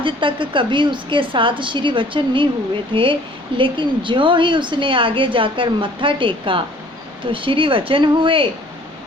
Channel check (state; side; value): normal; both; correlation 0.54